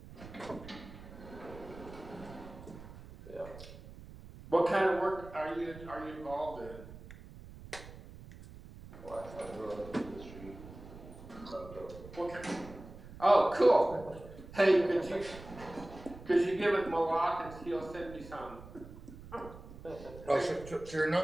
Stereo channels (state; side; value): noise; right; rumble, 16 dB below the sound